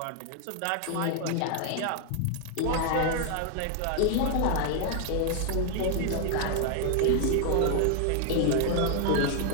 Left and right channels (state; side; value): different; both; correlation 0.00